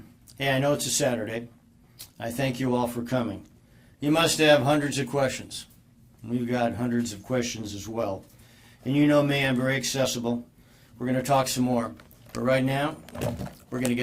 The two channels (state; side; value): identical; both; correlation 1.00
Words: I know it's a Saturday. I thank you all for coming. You must have hundreds of questions. We've got hundreds of questions as well. And you know me, I'm very accessible. We're going to talk some more. But right now, we're going to